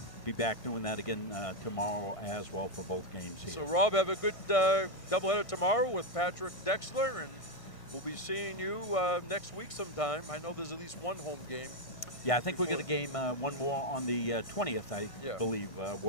be back doing that again tomorrow as well for both games here. So Rob, have a good doubleheader tomorrow with Patrick Dexler, and we'll be seeing you next week sometime. I know there's at least one home game. Yeah, I think we got a game, one more on the 20th, I believe.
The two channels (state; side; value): late; right; 1.6 ms